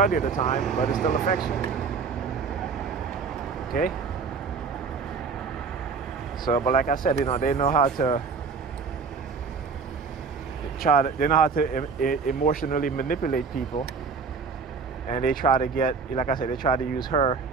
of the time, but it still affects you. Okay? So, but like I said, they know how to emotionally manipulate people, and they try to get, like I said, they try to use her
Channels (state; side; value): quieter; left; 5.2 dB